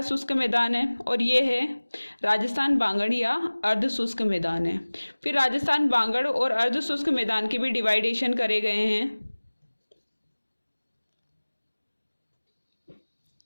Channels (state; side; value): inverted; both; correlation -1.00